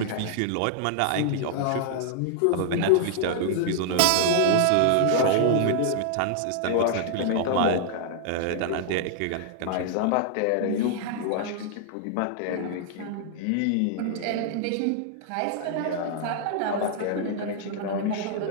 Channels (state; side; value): different; both; correlation -0.01